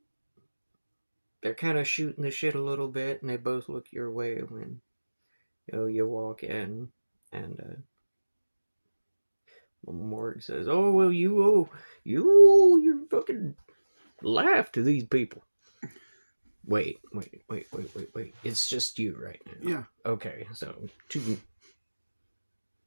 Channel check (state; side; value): inverted; both; correlation -1.00